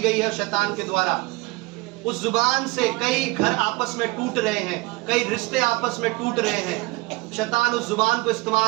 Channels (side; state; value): left; quieter; 23.8 dB